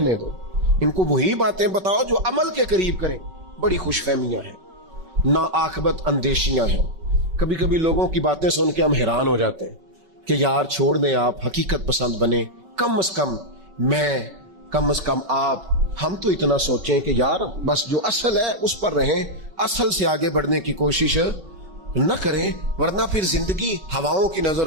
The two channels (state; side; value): late; left; 5.3 ms